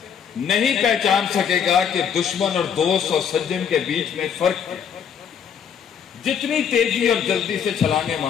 نہیں پہچان سکے گا کہ دشمن اور دوست اور سجن کے بیچ میں فرق ہے۔ جتنی تیزی اور جلدی سے چھلانگیں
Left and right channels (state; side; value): quieter; right; 7.7 dB